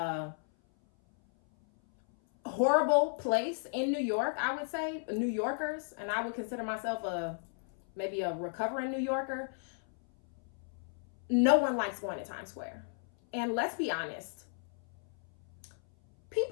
horrible place in New York, I would say. New Yorkers, and I would consider myself maybe a recovering New Yorker. No one likes going to Times Square. And let's be honest,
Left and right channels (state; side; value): silent; right; 55 dB below the other